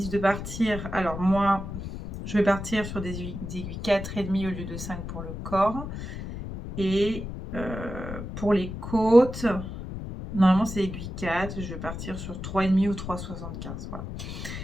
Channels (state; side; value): noise; left; rumble, 8 dB below the sound